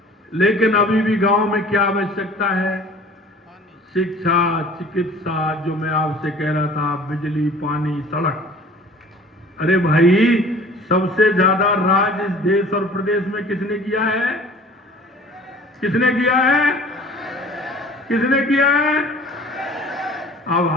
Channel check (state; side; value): normal; both; correlation 0.47